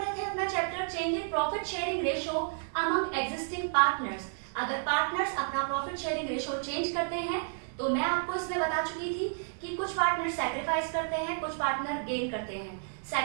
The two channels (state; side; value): silent; left; digital silence